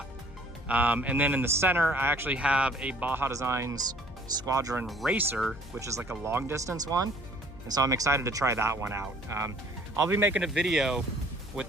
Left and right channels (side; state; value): left; noise; hum, 17 dB below the sound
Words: And then in the center, I actually have a Baja Designs Squadron Racer, which is like a long distance one. And so I'm excited to try that one out. I'll be making a video with